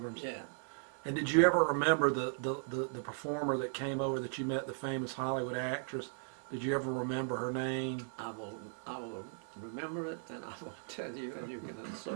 Yeah. And did you ever remember the performer that came over that you met, the famous Hollywood actress? Did you ever remember her name? I will remember it, and I will tell you, and you can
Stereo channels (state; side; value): silent; left; digital silence